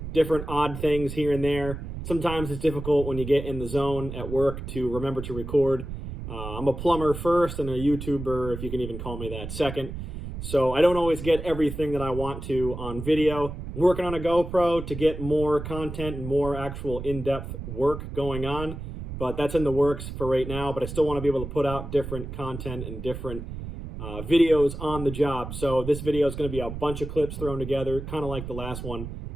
Different odd things here and there. Sometimes it's difficult when you get in the zone at work to remember to record. I'm a plumber first and a YouTuber, if you can even call me that, second. So I don't always get everything that I want to on video. I'm working on a GoPro to get more content and more actual in-depth work going on. But that's in the works for right now. But I still want to be able to put out different content and different videos on the job. So this video is going to be a bunch of clips thrown together, kind of like the last one.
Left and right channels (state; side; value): noise; right; rumble, 8 dB below the sound